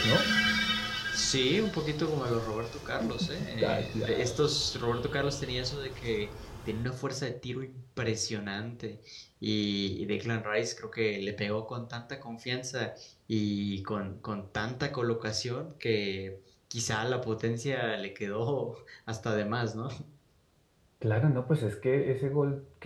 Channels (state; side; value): identical; both; correlation 1.00